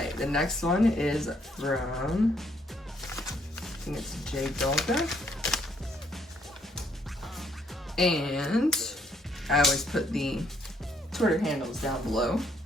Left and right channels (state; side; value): normal; both; correlation 0.69